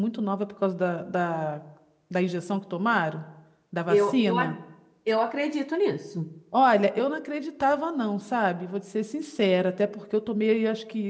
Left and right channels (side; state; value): both; identical; correlation 1.00